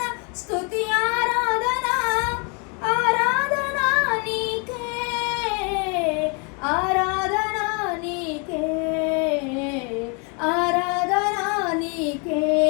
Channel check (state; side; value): quieter; right; 34.5 dB